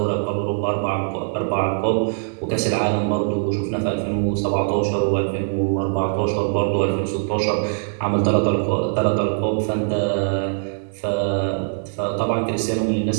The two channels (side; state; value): left; silent; digital silence